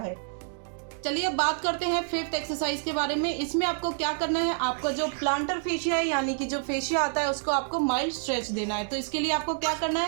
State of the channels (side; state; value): left; silent; digital silence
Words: चलिए अब बात करते हैं फिफ्थ एक्सरसाइज के बारे में। इसमें आपको क्या करना है, आपका जो प्लांटर फेशिया है, यानी कि जो फेशिया आता है, उसको आपको माइल्ड स्ट्रेच देना है। तो इसके लिए आपको क्या करना